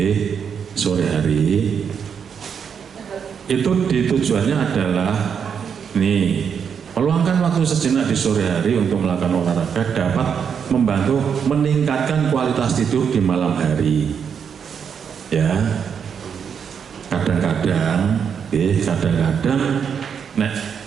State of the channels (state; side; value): quieter; left; 7.1 dB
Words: sore hari itu tujuannya adalah meluangkan waktu sejenak di sore hari untuk melakukan olahraga dapat membantu meningkatkan kualitas tidur di malam hari. Ya, kadang-kadang nek